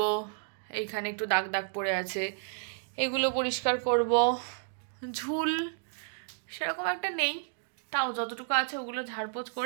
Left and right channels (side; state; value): left; silent; digital silence